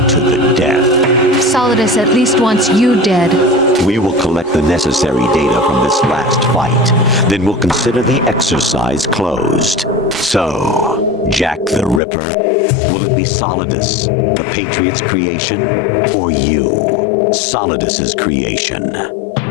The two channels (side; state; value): right; drops out; at 12.0 s